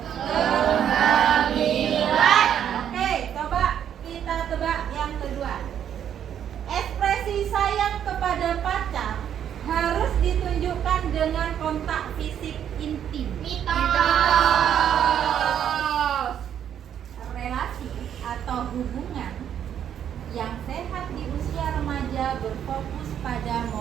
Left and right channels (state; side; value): quieter; left; 9.4 dB